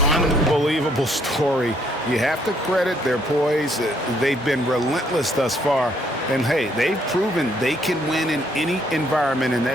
Unbelievable story. You have to credit their poise. They've been relentless thus far. And, hey, they've proven they can win in any environment, and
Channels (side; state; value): both; normal; correlation 0.68